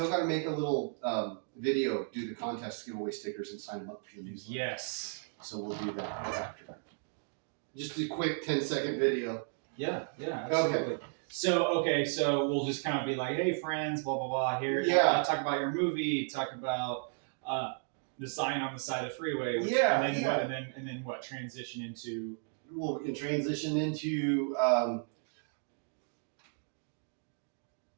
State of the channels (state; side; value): silent; left; 55 dB below the other